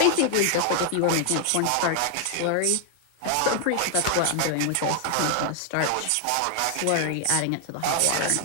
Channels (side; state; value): both; different; correlation 0.00